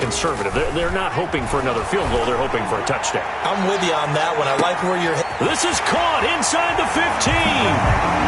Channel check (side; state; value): both; identical; correlation 1.00